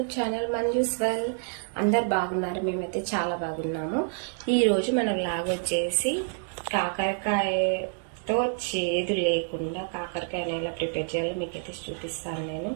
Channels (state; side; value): silent; left; 59 dB below the other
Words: channel Manju's well. అందరు బాగున్నారు, మేమైతే చాలా బాగున్నాము. ఈరోజు మన వ్లాగ్ వచ్చేసి కాకరకాయతో చేదు లేకుండా కాకరకాయని ఎలా ప్రిపేర్ చేయాలో మీకైతే చూపిస్తాను నేను.